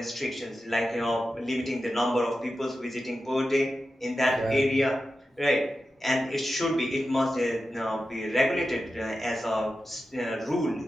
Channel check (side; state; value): both; normal; correlation 0.92